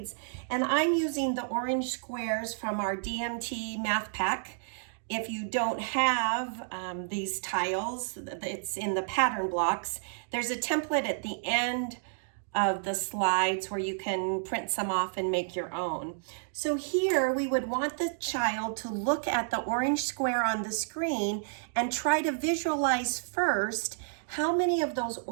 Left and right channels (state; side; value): silent; left; digital silence